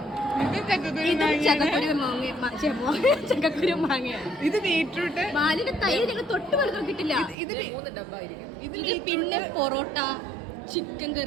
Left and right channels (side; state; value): left; drops out; at 7.4 s